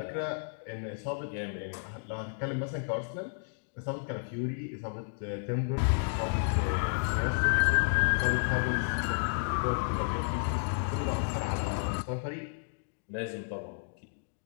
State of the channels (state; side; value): silent; right; digital silence